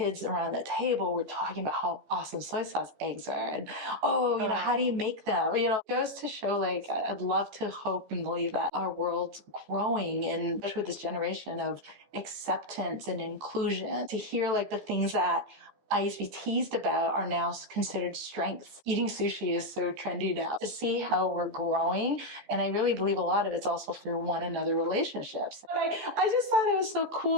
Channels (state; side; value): late; left; 15 ms